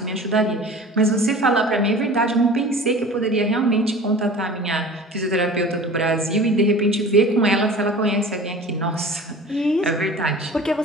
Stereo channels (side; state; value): both; normal; correlation 0.40